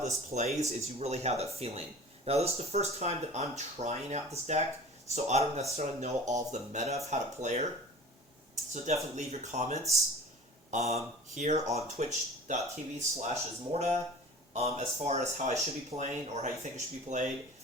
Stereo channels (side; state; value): both; normal; correlation 0.42